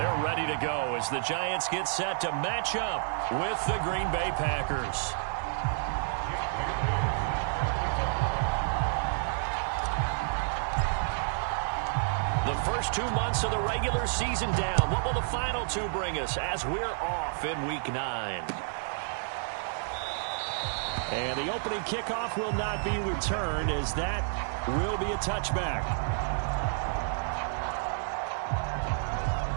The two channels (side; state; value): left; silent; digital silence